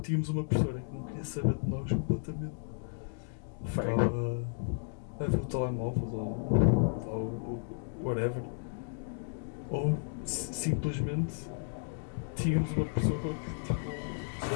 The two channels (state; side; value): silent; right; digital silence